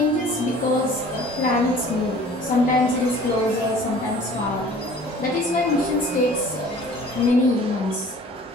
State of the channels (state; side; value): normal; both; correlation 0.48